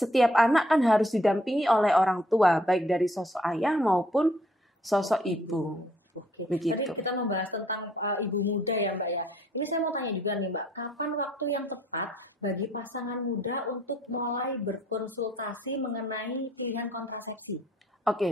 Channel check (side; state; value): both; normal; correlation 0.63